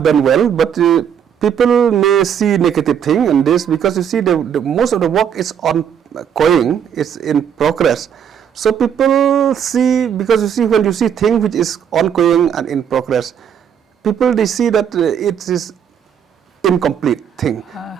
done well, but people may see negative thing in this because you see the most of the work is ongoing, it's in progress. So people see, because you see when you see thing which is ongoing and in progress, people they see that it is incomplete thing,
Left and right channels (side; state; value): left; quieter; 8.4 dB